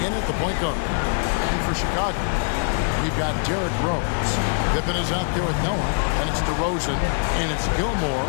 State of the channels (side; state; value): right; silent; 63 dB below the other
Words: in at the point guard. And for Chicago, we've got Derrick Rose. Pippen is out there with Noah, and it's DeRozan, and it's Gilmore